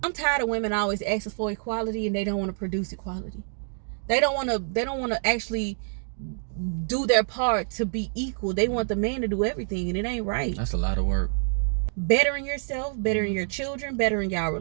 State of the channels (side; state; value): left; silent; digital silence